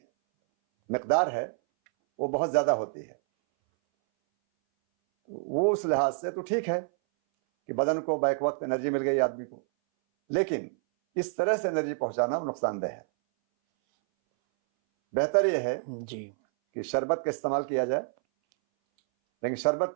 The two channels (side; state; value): left; silent; 59 dB below the other